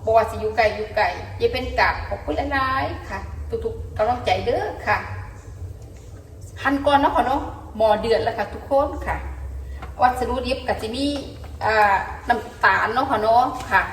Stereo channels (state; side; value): identical; both; correlation 1.00